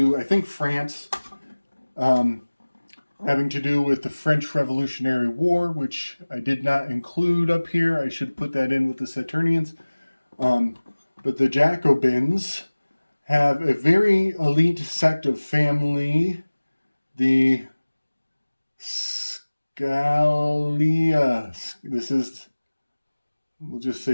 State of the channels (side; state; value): both; inverted; correlation -1.00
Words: I think, France, having to do with the French Revolutionary War, which I did not include up here. I should put that in with the Saturnians. But the Jacobins have a very elite sect of family, the Scalia. We'll just